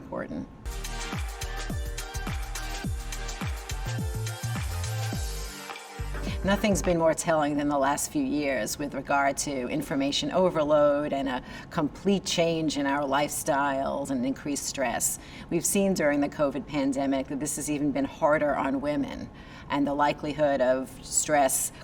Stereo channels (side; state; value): both; identical; correlation 1.00